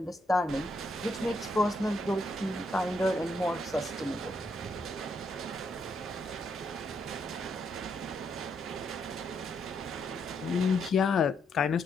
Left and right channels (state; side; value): normal; both; correlation 0.76